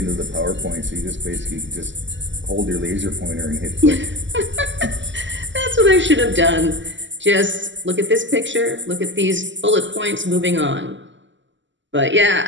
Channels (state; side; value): late; left; 0.54 ms